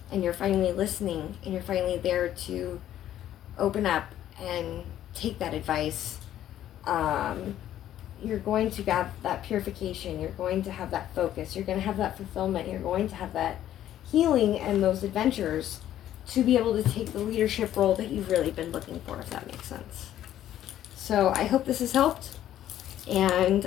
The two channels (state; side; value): quieter; right; 12.0 dB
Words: and you're finally listening, and you're finally there to open up and take that advice, you're going to have that purification, you're going to have that focus, you're going to have that fulfillment, you're going to have that healing and those adventures to be able to take the leadership role that you've really been looking for, if that makes sense. So I hope this has helped, and